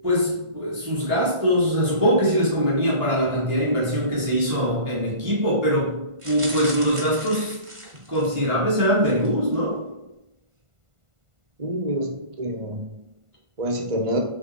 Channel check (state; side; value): late; left; 1.5 ms